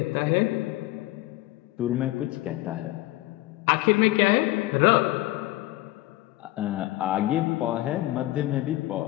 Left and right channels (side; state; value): right; quieter; 17.8 dB